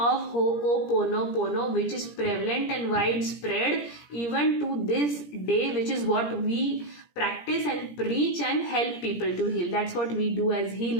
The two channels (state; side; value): late; right; 17 ms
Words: Ho-o-ponopono, which is prevalent and widespread even to this day, which is what we practice and preach and help people to heal. That's what we do as